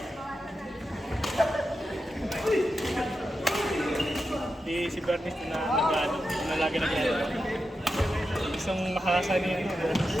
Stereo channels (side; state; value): both; normal; correlation 0.89